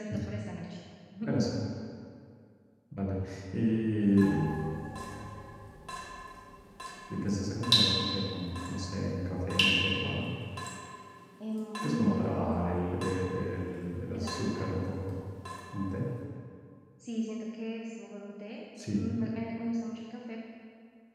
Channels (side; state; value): both; identical; correlation 1.00